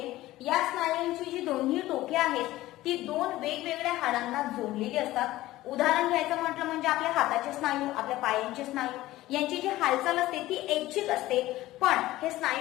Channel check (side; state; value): right; quieter; 16.5 dB